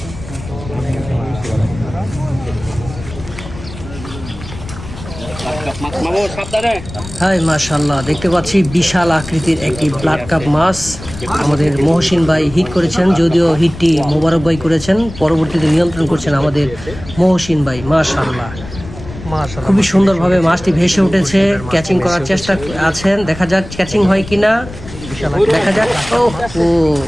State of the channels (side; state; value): left; noise; rumble, 14 dB below the sound